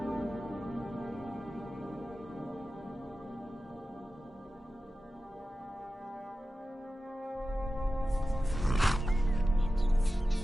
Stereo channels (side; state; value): both; normal; correlation 0.94